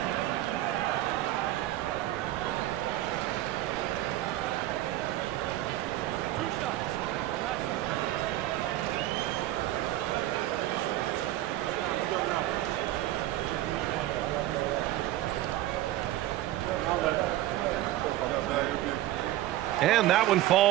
And that one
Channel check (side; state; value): left; quieter; 14.9 dB